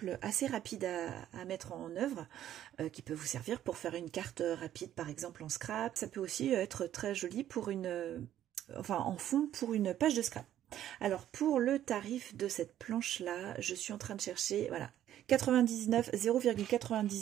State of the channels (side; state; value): left; quieter; 11.7 dB